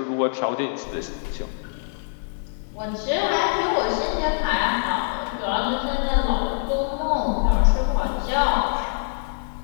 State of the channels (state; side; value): silent; right; 59 dB below the other